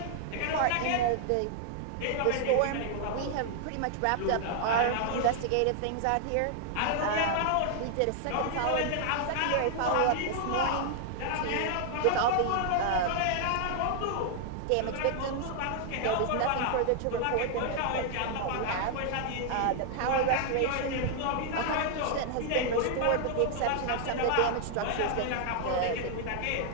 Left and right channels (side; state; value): both; different; correlation 0.00